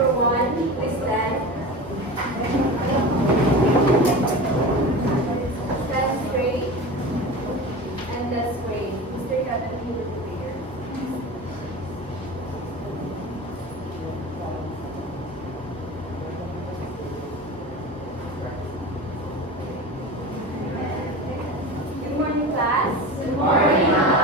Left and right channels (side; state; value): both; normal; correlation 0.31